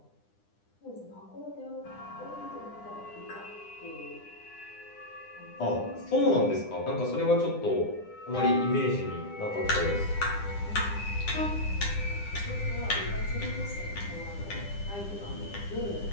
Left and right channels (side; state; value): right; late; 9.9 ms